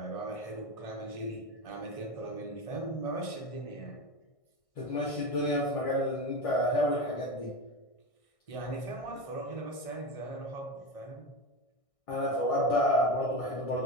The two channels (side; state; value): right; late; 1.6 ms